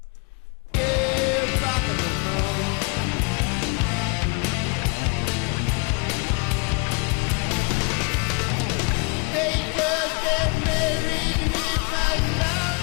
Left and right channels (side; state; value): right; quieter; 33.0 dB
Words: Hey, back at the moon. They just get married in my